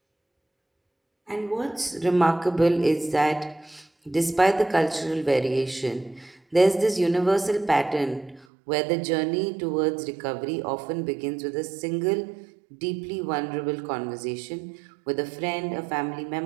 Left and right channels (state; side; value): drops out; left; at 8.5 s